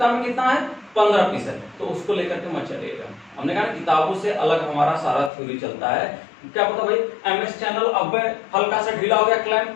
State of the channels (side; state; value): right; drops out; at 5.3 s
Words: में कितना है 15 पीस है, तो उसको लेकर के मत चलिएगा। हमने कहा किताबों से अलग हमारा सारा थ्योरी चलता है। क्या पता भाई एमएस चैनल अब हल्का सा ढीला हो गया क्लैंप,